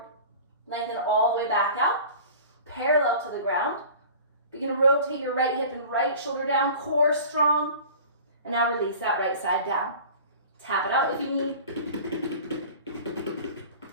Lengthen all the way back out, parallel to the ground. Begin to rotate your right hip and right shoulder down, core strong. And now release that right side down. Tap it out if you need.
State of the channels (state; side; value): inverted; both; correlation -0.41